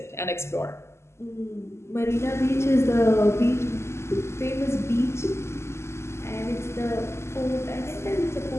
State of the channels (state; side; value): late; right; 0.13 ms